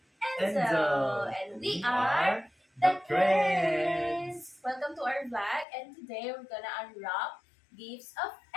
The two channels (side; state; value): right; drops out; at 5.7 s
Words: Enzo. Enzo. And we are the Creds. Welcome to our vlog, and today we're gonna unwrap gifts of